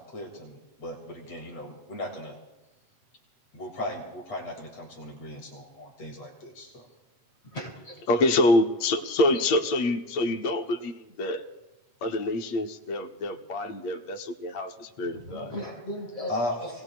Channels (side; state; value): right; late; 8.6 ms